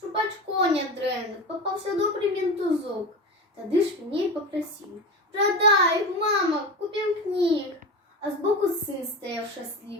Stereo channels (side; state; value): both; normal; correlation 0.25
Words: очко не дренив, попався добрий ментузок. Тоді ж він їй попросив: продай, мама, купим книг. А збоку син стояв